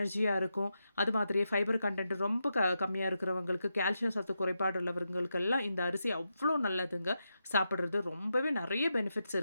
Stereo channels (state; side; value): inverted; both; correlation -0.87